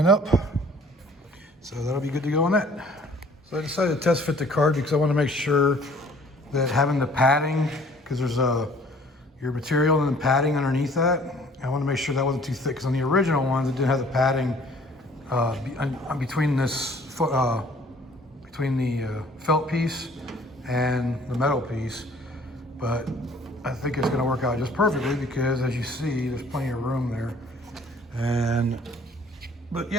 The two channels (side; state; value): both; normal; correlation 0.55